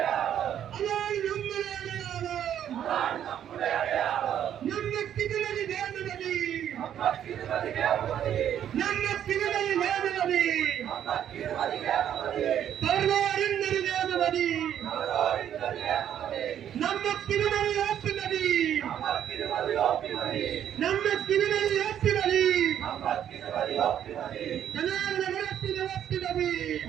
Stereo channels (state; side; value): quieter; left; 10.0 dB